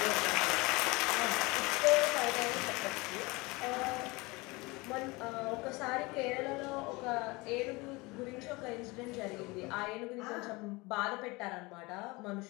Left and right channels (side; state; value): right; quieter; 24.0 dB